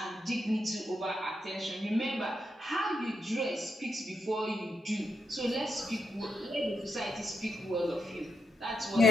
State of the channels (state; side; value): normal; both; correlation 0.83